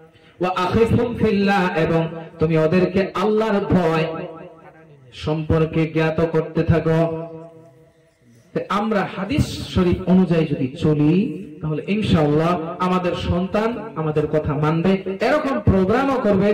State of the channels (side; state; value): both; identical; correlation 1.00